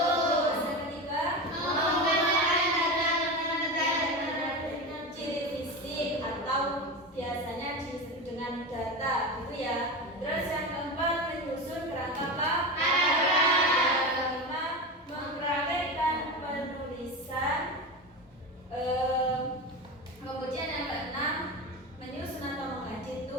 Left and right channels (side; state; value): both; normal; correlation 0.23